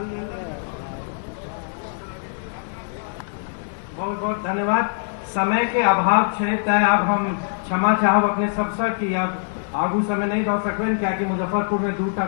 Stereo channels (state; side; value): silent; right; digital silence